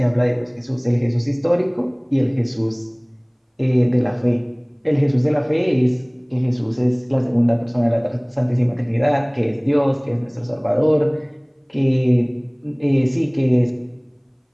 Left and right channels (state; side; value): identical; both; correlation 1.00